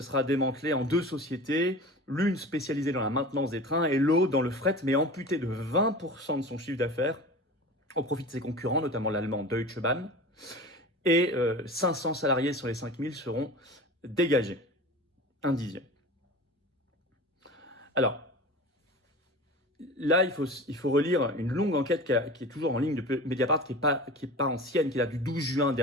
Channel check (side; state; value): both; normal; correlation 0.35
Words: sera démantelé en 2 sociétés, l'une spécialisée dans la maintenance des trains et l'autre dans le fret, mais amputée de 20% de son chiffre d'affaires au profit de ses concurrents, notamment l'allemand Deutsche Bahn. Et 500 salariés sur les 5000 seront dégagés. Un dixième. Alors, là, il faut relire une longue enquête qui est toujours en ligne de Mediapart, qui est pas ancienne, qui date du 12 juin